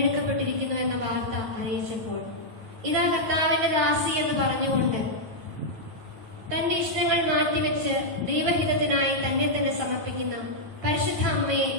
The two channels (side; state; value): left; late; 9.6 ms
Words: എന്ന വാർത്ത അറിയിച്ചപ്പോൾ ഇതാ കർത്താവിന്റെ ദാസി എന്ന് പറഞ്ഞുകൊണ്ട് തന്റെ ഇഷ്ടങ്ങൾ മാറ്റിവെച്ച് ദൈവഹിതത്തിനായി തന്നെ തന്നെ സമർപ്പിക്കുന്ന പരിശുദ്ധ അമ്മയെ